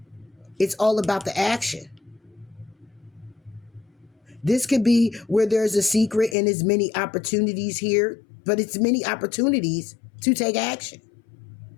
It's all about the action. This could be where there's a secret and there's many opportunities here, but it's many opportunities to take action.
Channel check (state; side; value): drops out; right; at 6.4 s